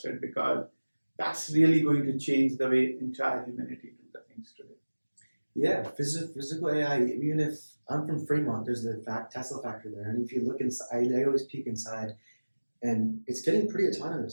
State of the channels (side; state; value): both; inverted; correlation -1.00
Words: because that's really going to change the way entire humanity do the things today. Yeah, physical AI. Even if I'm from Fremont, there's the Tesla factory there, and if you look inside, I always peek inside, and it's getting pretty